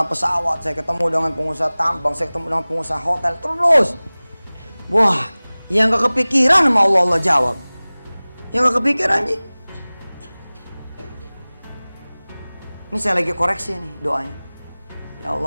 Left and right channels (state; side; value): inverted; both; correlation -1.00